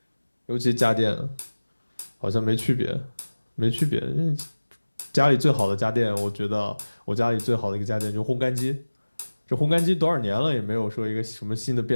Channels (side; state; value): both; inverted; correlation -1.00